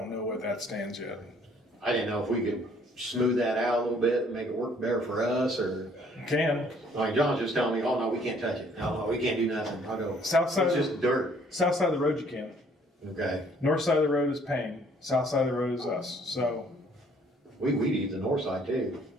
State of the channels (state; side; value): normal; both; correlation 0.61